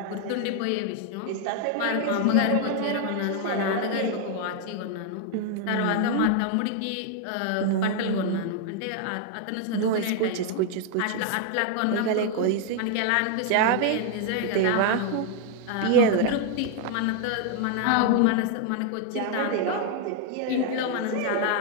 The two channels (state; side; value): different; both; correlation 0.00